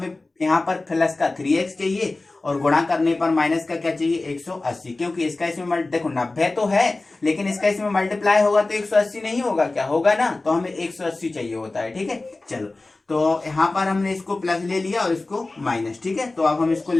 यहाँ पर प्लस का 3x चाहिए और गुणा करने पर माइनस का क्या चाहिए 180, क्योंकि इसका इसमें देखो 90 तो है लेकिन इसका इसमें मल्टीप्लाई होगा तो 180 नहीं होगा, क्या होगा ना, तो हमें 180 चाहिए होता है, ठीक है। चलो तो यहाँ पर हमने इसको प्लस ले लिया और इसको माइनस, ठीक है। तो अब हम इसको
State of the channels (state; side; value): quieter; right; 3.2 dB